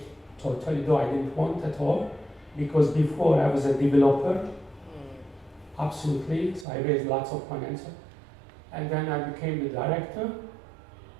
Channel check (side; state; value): left; drops out; at 6.7 s